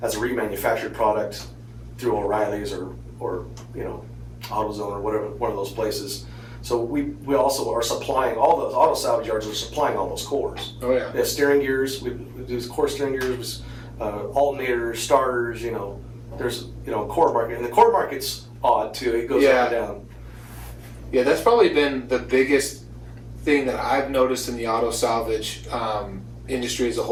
as a remanufactured product through O'Reilly's or AutoZone or whatever, one of those places. So we also are supplying all those auto salvage yards are supplying all those cores. Oh yeah. They have steering gears. We do core steering gears. Alternators, starters, there's core market, and the core market's odd too. It goes up and down. Yeah, that's probably been the biggest thing that I've noticed in the auto salvage industry as a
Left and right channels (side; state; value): both; identical; correlation 1.00